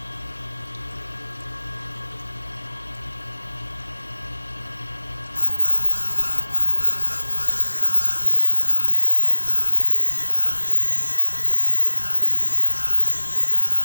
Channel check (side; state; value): both; inverted; correlation -1.00